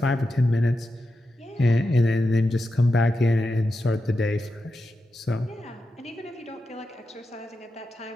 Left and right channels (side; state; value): both; normal; correlation 0.89